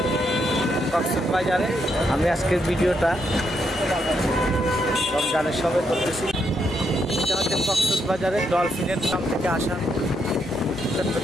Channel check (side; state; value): both; normal; correlation 0.78